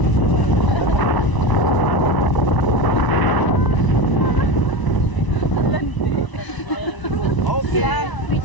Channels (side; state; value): right; late; 1.0 ms